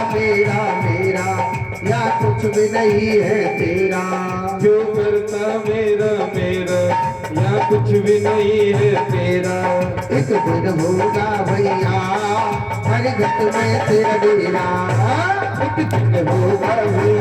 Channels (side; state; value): both; identical; correlation 1.00